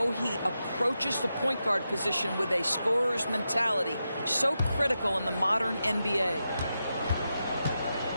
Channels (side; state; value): both; inverted; correlation -0.88